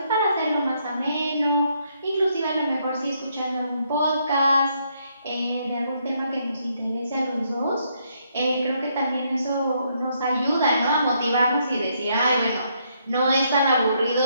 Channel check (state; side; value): inverted; both; correlation -0.73